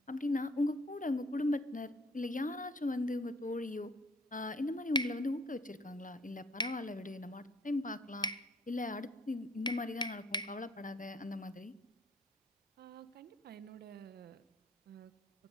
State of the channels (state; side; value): normal; both; correlation 0.56